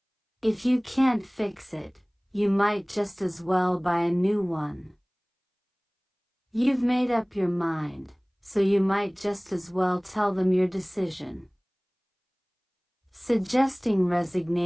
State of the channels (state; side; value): identical; both; correlation 1.00